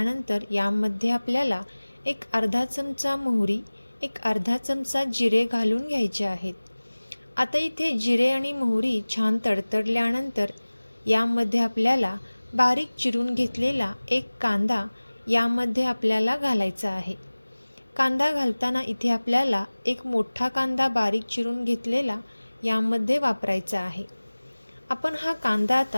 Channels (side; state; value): both; inverted; correlation -1.00